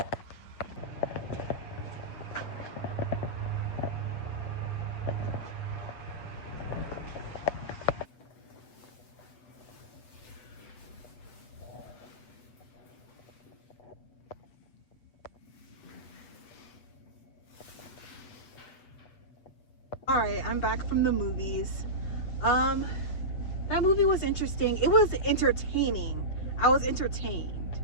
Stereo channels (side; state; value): right; late; 8.2 ms